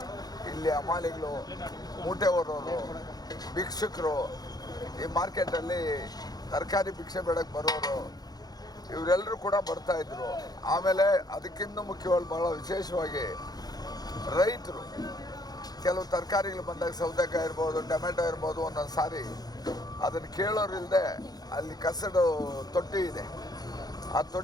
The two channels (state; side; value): late; right; 0.19 ms